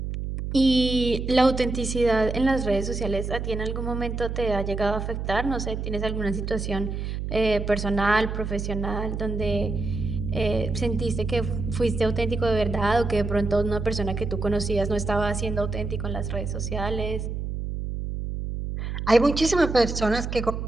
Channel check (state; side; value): noise; right; hum, 4 dB below the sound